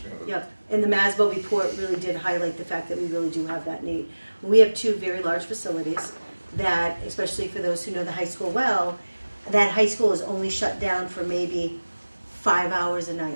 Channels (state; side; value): inverted; both; correlation -1.00